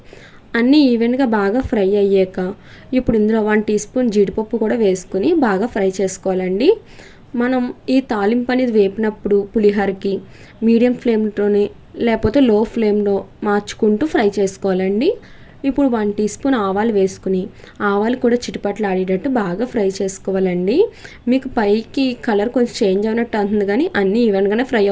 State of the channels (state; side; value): identical; both; correlation 1.00